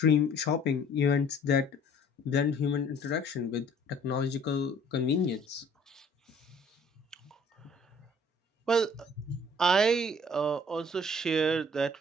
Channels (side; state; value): both; normal; correlation 0.55